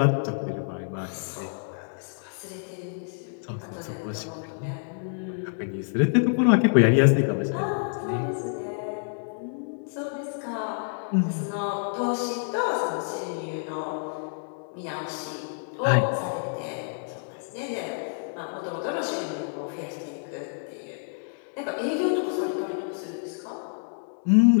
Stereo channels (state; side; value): silent; right; digital silence